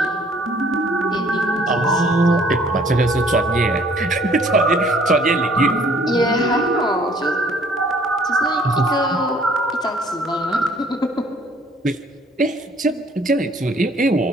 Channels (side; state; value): both; normal; correlation 0.58